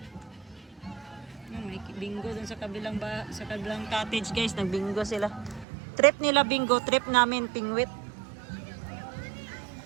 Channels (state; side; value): drops out; left; at 5.7 s